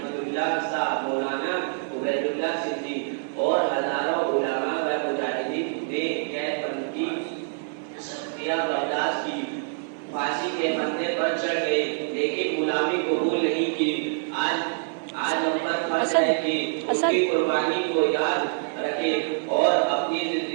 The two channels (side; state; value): left; silent; 60 dB below the other